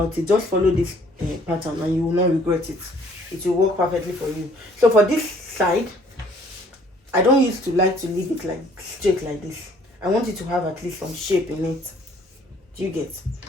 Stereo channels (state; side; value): normal; both; correlation 0.59